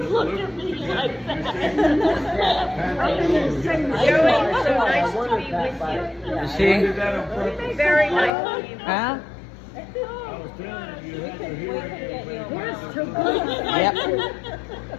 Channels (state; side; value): drops out; right; at 8.3 s